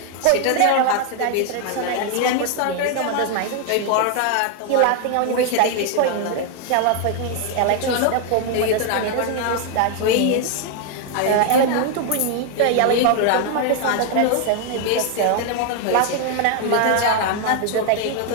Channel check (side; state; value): both; different; correlation 0.00